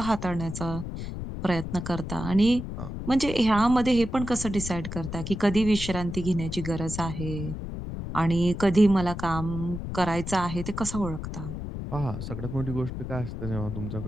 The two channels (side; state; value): left; noise; rumble, 7 dB below the sound